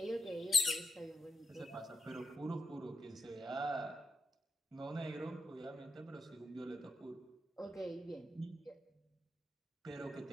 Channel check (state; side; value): normal; both; correlation 0.84